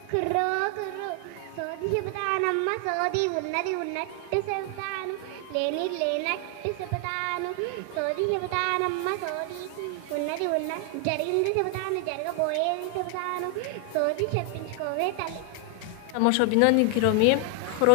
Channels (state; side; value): different; both; correlation 0.00